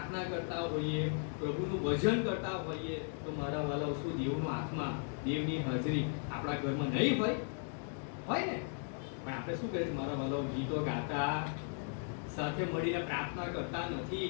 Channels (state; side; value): silent; right; 53 dB below the other